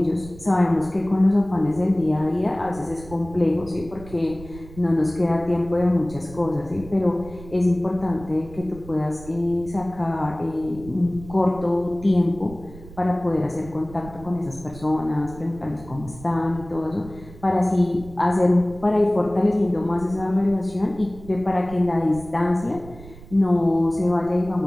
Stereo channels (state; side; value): noise; right; rumble, 17 dB below the sound